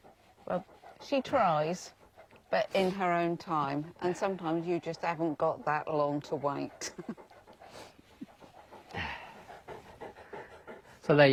Well, she tries, but in her own time, and sometimes you just haven't got that long to wait. So there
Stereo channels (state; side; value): identical; both; correlation 1.00